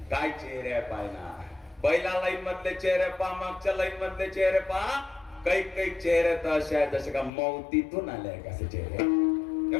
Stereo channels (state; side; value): drops out; right; at 7.3 s